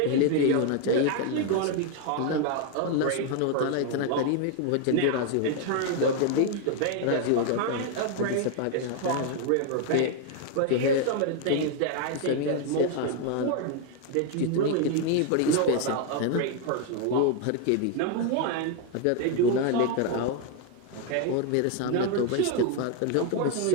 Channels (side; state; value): both; different; correlation 0.01